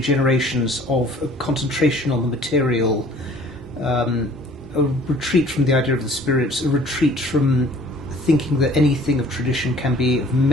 of a concentration on the material, a retreat from the idea of the spirit, a retreat from thinking that anything of tradition can be of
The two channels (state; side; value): normal; both; correlation 0.52